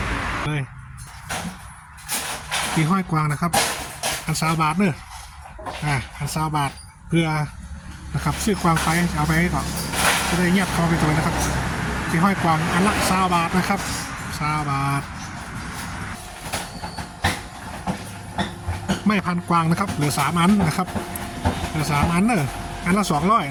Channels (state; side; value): identical; both; correlation 1.00